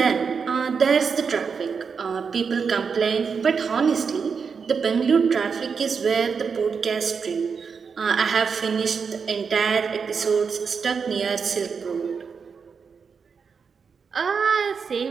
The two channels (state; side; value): quieter; left; 5.8 dB